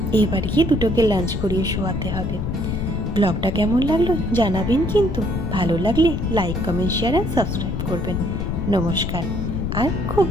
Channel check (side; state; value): left; noise; rumble, 2 dB below the sound